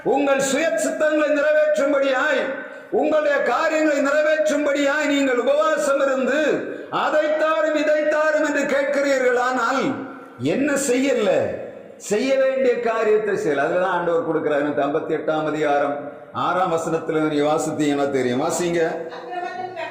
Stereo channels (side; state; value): both; identical; correlation 1.00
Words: உங்கள் சுய சித்தங்களை நிறைவேற்றும்படியாய், உங்களுடைய காரியங்களை நிறைவேற்றும்படியாய் நீங்கள் உபவாசம் இருந்து அதைத்தாரும் இதைத்தாரும் என்று கேட்கிறீர்கள். ஆனால் என்ன செய்யல? செய்ய வேண்டிய காரியத்தை செய்யல. அதுலதான் ஆண்டவர் கொடுக்கிறார். 58ஆம் அதிகாரம் 6ஆம் வசனத்துல நீ வாசித்தீங்கன்னா தெரியும். வாசிங்க.